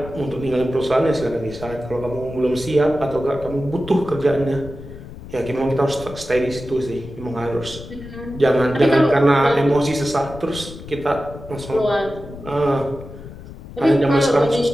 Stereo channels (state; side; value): noise; left; rumble, 14 dB below the sound